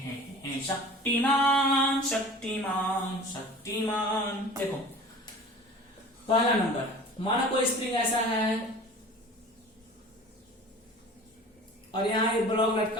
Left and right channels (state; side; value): normal; both; correlation 0.41